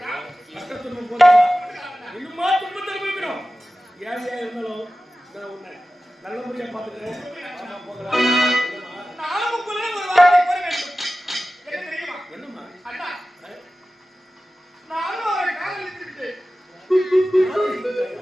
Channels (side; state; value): both; normal; correlation 0.95